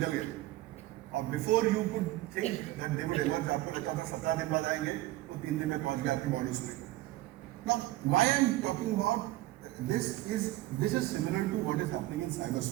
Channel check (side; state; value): left; quieter; 17.0 dB